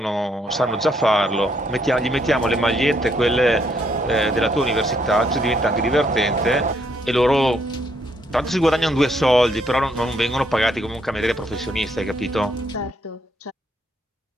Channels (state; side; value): normal; both; correlation 0.72